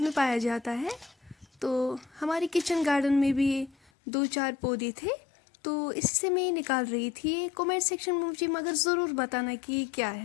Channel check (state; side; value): drops out; right; at 3.9 s